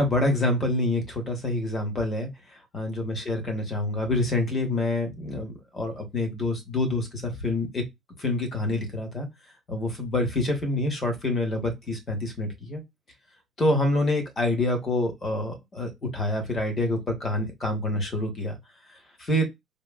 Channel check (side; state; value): both; normal; correlation 0.39